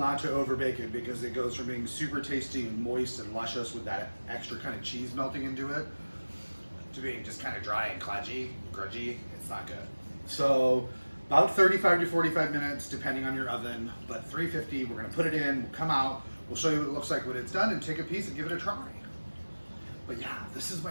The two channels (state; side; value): inverted; both; correlation -1.00